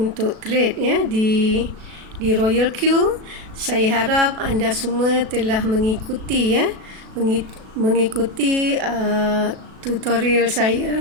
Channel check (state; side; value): late; left; 37 ms